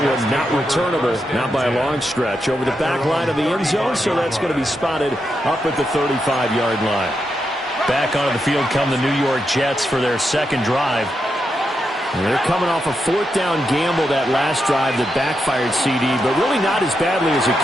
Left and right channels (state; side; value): normal; both; correlation 0.85